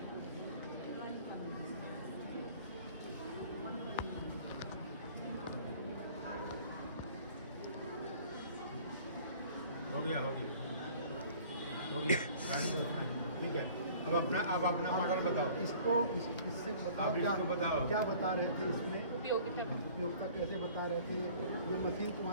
हो गया ठीक है। अब अपना मॉडल बताओ। इसको इससे बताओ, आप इसको बताओ। क्या बता रहे थे इसमें, उपयोगिता उपयोगिता कैसे बता रहे थे, ये मशीन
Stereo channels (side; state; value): both; inverted; correlation -0.50